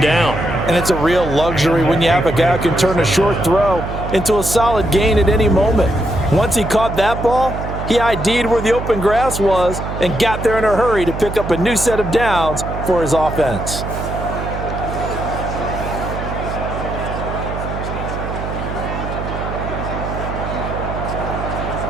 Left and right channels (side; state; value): right; noise; hum, 6 dB below the sound